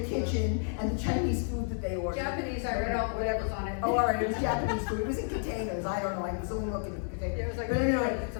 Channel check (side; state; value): right; silent; 57 dB below the other